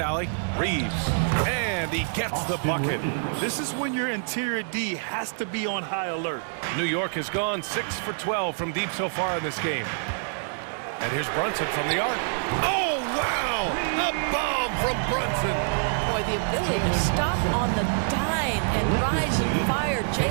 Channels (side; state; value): left; silent; digital silence